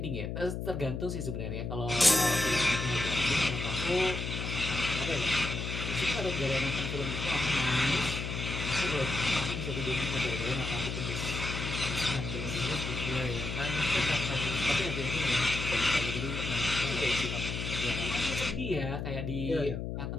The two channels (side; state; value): left; noise; hum, 4 dB below the sound